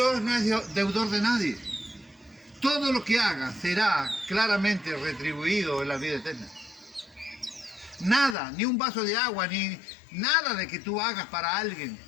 no es deudor de nadie. Todo lo que hagas será claramente retribuido en la vida eterna. Nada, ni un vaso de agua, ni nada de que tú hagas para alguien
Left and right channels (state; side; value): drops out; right; at 8.3 s